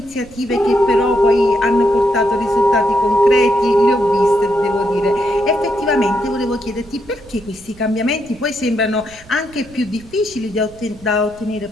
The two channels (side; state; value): right; noise; rumble, 23 dB below the sound